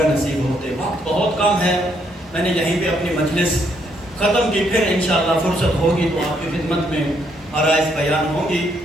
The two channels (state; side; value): normal; both; correlation 0.72